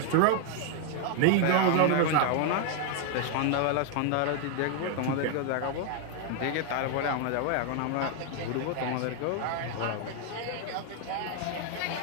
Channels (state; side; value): different; both; correlation 0.00